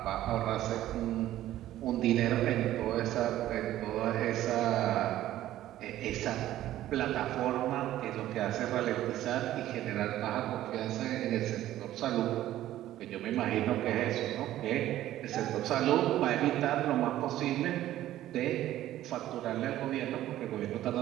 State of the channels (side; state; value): left; quieter; 13.7 dB